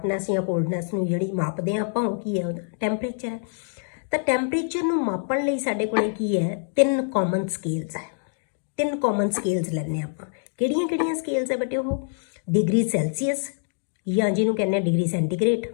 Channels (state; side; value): silent; right; digital silence